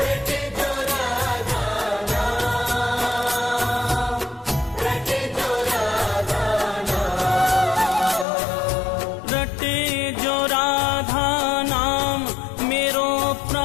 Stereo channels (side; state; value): right; drops out; at 8.2 s